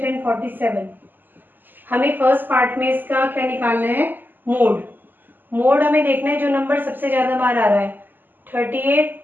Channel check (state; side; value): late; left; 0.090 ms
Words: एंड 47. हमें फर्स्ट पार्ट में इसका क्या निकालना है, मोड हमें देखना है जो नंबर सबसे ज़्यादा बार आ रहा है. 38,